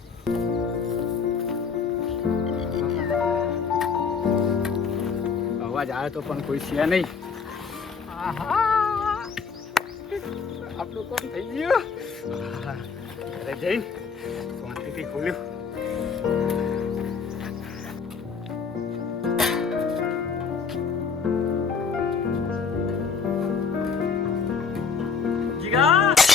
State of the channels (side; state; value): right; quieter; 5.6 dB